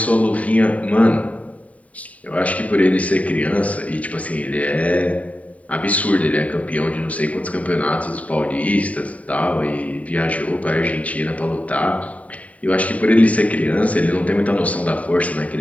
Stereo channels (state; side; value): late; right; 0.068 ms